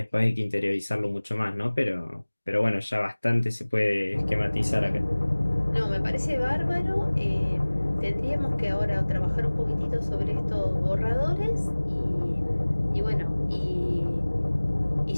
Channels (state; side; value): inverted; both; correlation -1.00